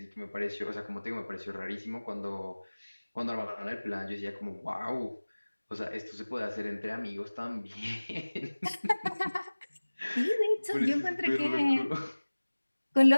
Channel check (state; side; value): inverted; both; correlation -1.00